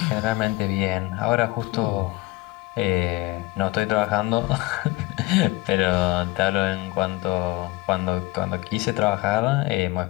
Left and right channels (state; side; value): quieter; right; 19.7 dB